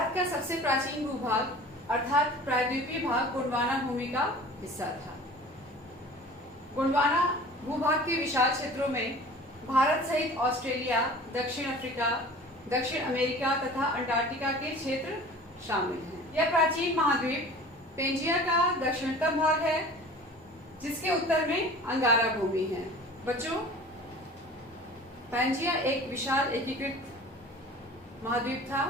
का सबसे प्राचीन भूभाग अर्थात प्रायद्वीपीय भाग गोंडवाना भूमि का हिस्सा था। गोंडवाना भूभाग के विशाल क्षेत्रों में भारत सहित ऑस्ट्रेलिया, दक्षिण अफ्रीका, दक्षिण अमेरिका तथा अंटार्कटिका के क्षेत्र शामिल हैं। यह प्राचीन महाद्वीप पेंजिया का दक्षिणतम भाग है, जिसके उत्तर में अंगारा भूमि है। बच्चों पेंजिया एक विशाल एकीकृत महाद्वीप था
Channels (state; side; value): normal; both; correlation 0.42